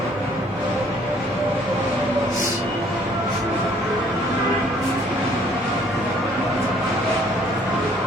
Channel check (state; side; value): normal; both; correlation 0.60